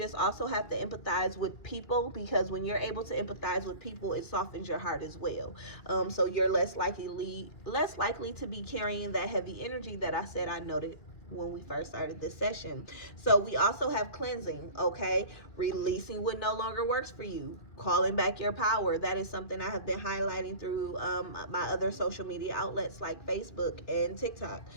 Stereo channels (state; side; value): late; right; 2.2 ms